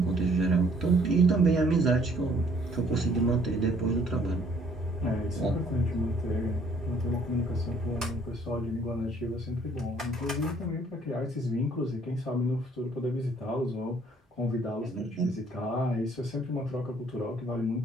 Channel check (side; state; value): both; normal; correlation 0.61